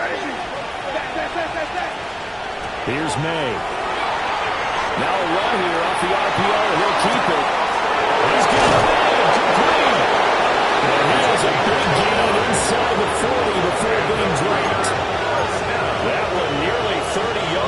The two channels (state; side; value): identical; both; correlation 1.00